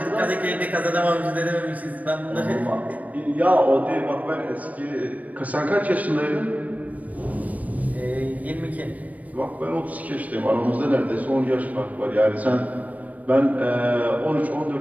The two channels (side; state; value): left; late; 0.072 ms